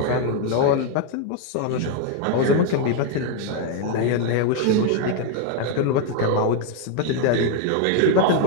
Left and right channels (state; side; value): different; both; correlation 0.01